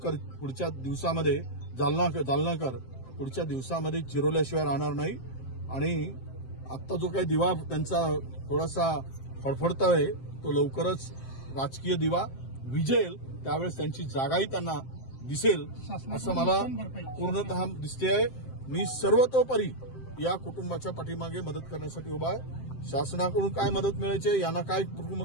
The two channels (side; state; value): right; late; 7.7 ms